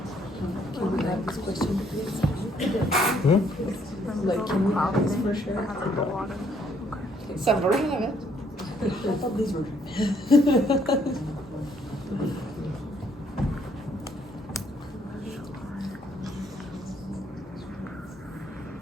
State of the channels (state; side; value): normal; both; correlation 0.67